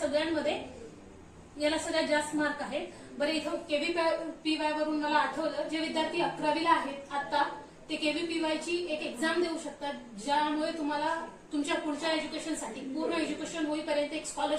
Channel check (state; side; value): identical; both; correlation 1.00